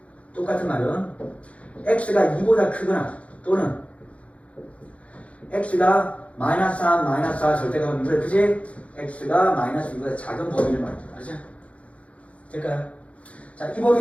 똑같은 말은 x가 2보다 크거나 또는 x가 마이너스 3, 마이너스 4 절대값은 2보다 크지? x가 마이너스 2보다 작은 범위를 말이죠. 알죠? 될까요? 자, 이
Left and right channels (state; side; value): late; right; 0.064 ms